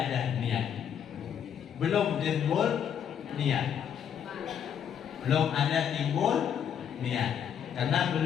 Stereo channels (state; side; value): quieter; right; 8.6 dB